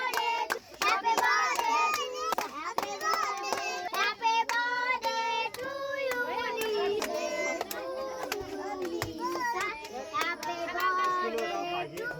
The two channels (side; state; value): both; identical; correlation 1.00